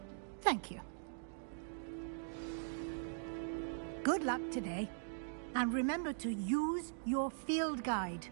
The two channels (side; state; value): left; silent; digital silence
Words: Thank you. Good luck today. And remember to use your field guide.